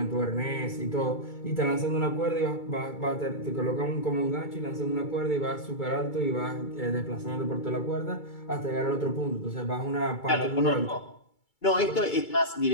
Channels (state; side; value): late; right; 2.3 ms